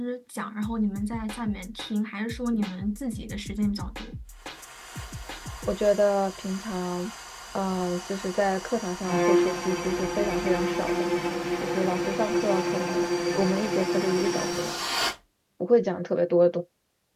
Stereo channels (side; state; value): both; identical; correlation 1.00